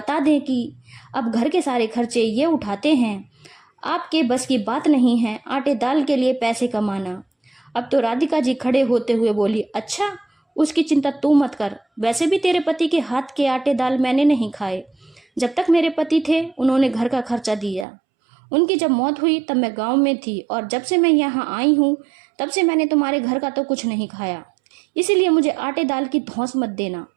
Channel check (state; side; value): drops out; left; at 17.9 s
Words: दें कि अब घर के सारे खर्चे ये उठाते हैं। आपके बस की बात नहीं है आटे दाल के लिए पैसे कमाना। अब तो राधिका जी खड़े होते हुए बोली, अच्छा, उसकी चिंता तू मत कर। वैसे भी तेरे पति के हाथ के आटे दाल मैंने नहीं खाए। जब तक मेरे पति थे उन्होंने घर का खर्चा दिया। उनकी जब मौत हुई तब मैं गांव में थी और जब से मैं यहाँ आई हूँ तब से मैंने तुम्हारे घर का तो कुछ नहीं खाया। इसीलिए मुझे आटे दाल की धौंस मत देना।